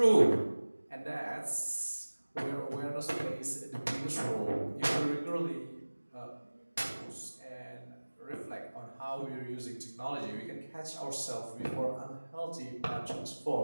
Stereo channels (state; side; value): inverted; both; correlation -1.00